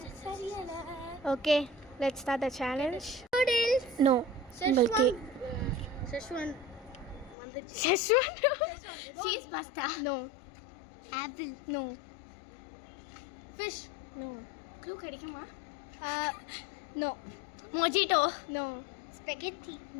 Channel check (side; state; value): right; drops out; at 7.4 s